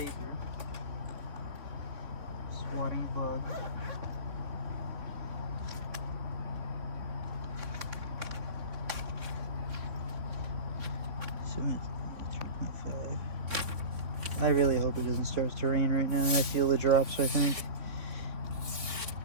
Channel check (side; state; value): left; late; 3.5 ms